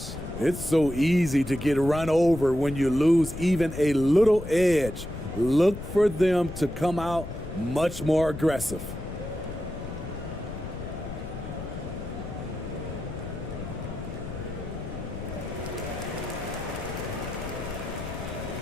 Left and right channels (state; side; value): noise; left; rumble, 9 dB below the sound